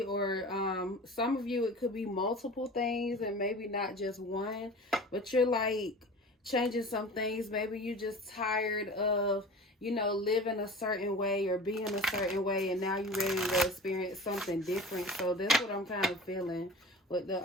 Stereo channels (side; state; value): both; normal; correlation 0.38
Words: or some of you, it could be multiple things and maybe not just one, but you're like changing some things. Maybe you're just tired of, living a certain way or being a certain way, and now you're ready to experience something different. So that's what I'm kind of feeling with the